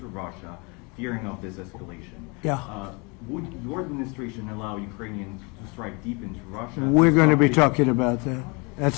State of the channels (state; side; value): quieter; right; 29.9 dB